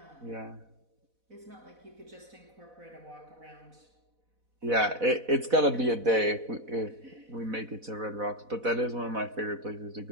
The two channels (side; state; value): left; late; 4.1 ms